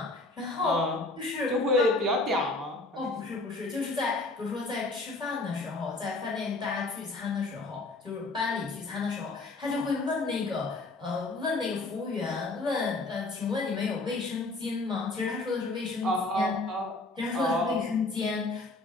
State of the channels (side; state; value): right; quieter; 3.1 dB